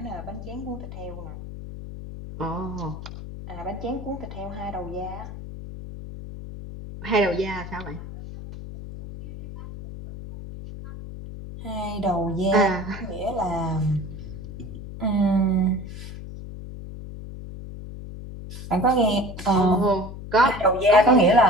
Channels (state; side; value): noise; left; hum, 11 dB below the sound